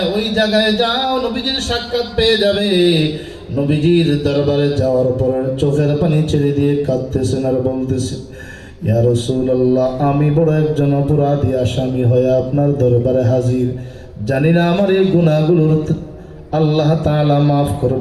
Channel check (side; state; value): both; identical; correlation 1.00